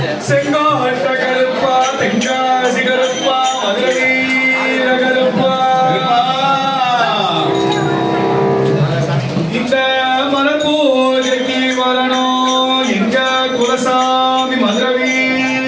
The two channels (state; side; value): identical; both; correlation 1.00